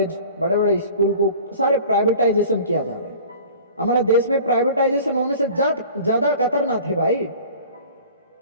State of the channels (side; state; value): both; inverted; correlation -0.44